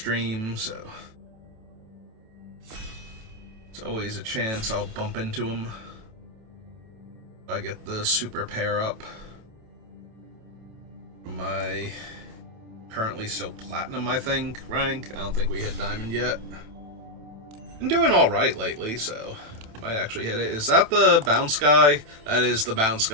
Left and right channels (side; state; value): left; late; 27 ms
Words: so it's always a chance I'll bump into him if I get the super pair up. My currently still platinum, I think, rank. I don't think we hit diamond yet. Been doing alright lately, so might actually hit it. Is that the bounce guy? That is the bounce